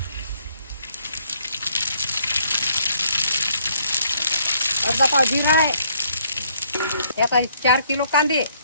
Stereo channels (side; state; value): both; inverted; correlation -0.66